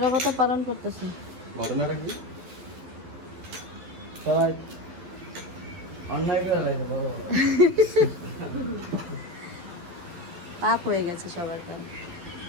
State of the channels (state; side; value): late; left; 12 ms